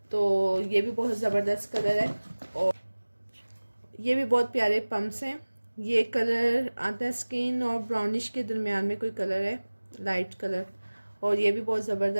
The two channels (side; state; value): both; inverted; correlation -1.00